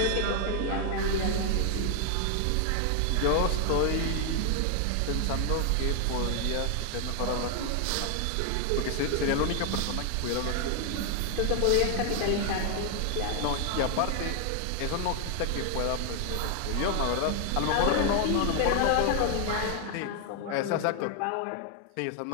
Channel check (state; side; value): different; both; correlation 0.00